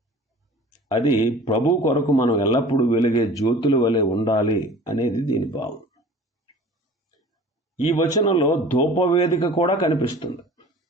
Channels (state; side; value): normal; both; correlation 0.43